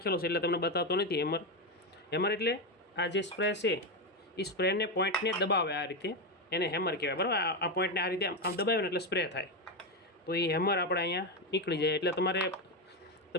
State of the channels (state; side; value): normal; both; correlation 0.10